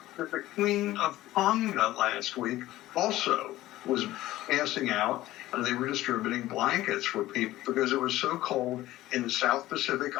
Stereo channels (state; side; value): quieter; right; 15.9 dB